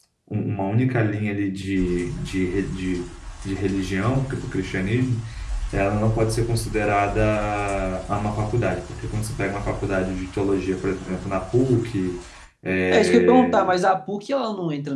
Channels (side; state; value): both; identical; correlation 1.00